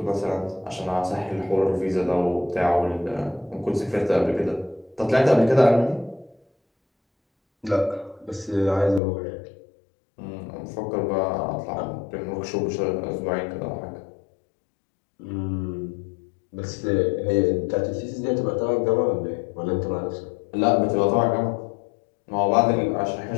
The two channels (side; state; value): right; drops out; at 9.0 s